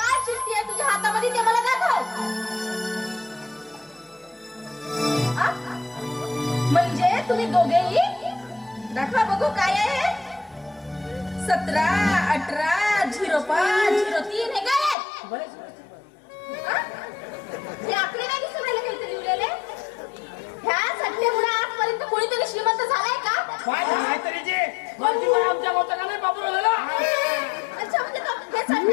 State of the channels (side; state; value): right; drops out; at 15.0 s